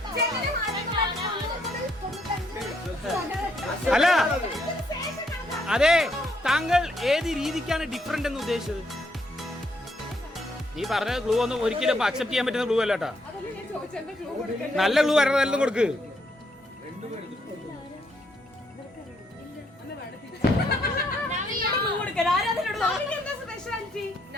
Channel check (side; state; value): both; normal; correlation 0.73